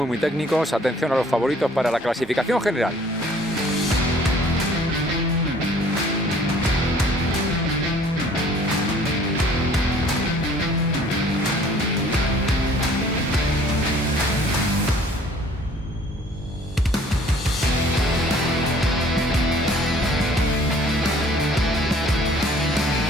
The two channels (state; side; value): normal; both; correlation 0.55